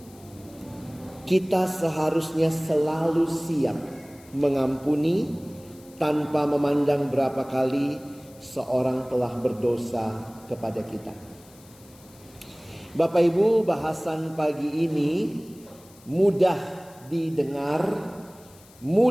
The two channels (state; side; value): noise; left; hiss, 25 dB below the sound